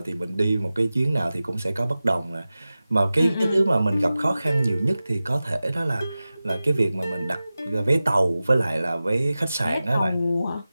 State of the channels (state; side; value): inverted; both; correlation -0.96